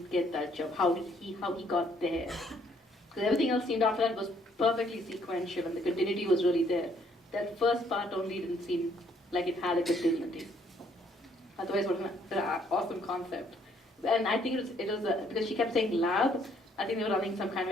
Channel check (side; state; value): both; normal; correlation 0.66